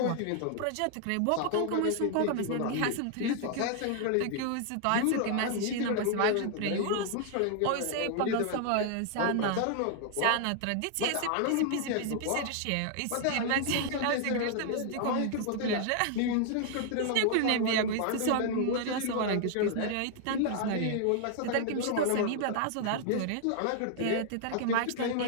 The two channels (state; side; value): different; both; correlation 0.00